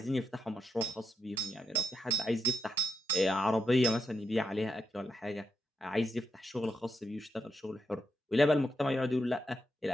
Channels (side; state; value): both; normal; correlation 0.83